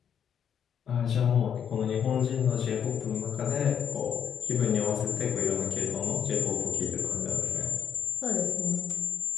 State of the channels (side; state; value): right; quieter; 8.2 dB